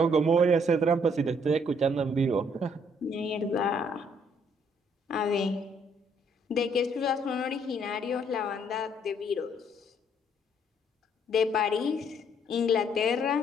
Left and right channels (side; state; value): both; normal; correlation 0.66